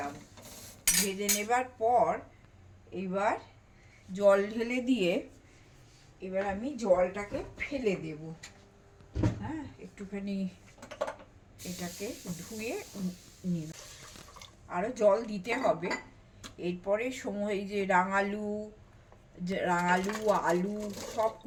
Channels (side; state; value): both; identical; correlation 1.00